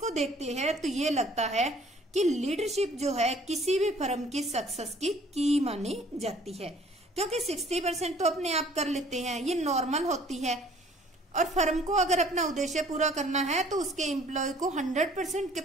देखते हैं तो ये लगता है कि लीडरशिप जो है किसी भी फर्म की सक्सेस की मानी जाती है, क्योंकि 60% तो अपने आप कर लेते हैं, ये नॉर्मल होती है। और फर्म को अगर अपना उद्देश्य पूरा करना है तो उसके एम्प्लॉय को 100%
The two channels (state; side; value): normal; both; correlation 0.55